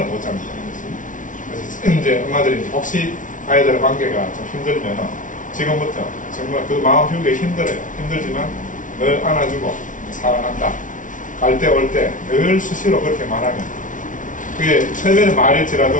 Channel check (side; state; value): right; late; 0.38 ms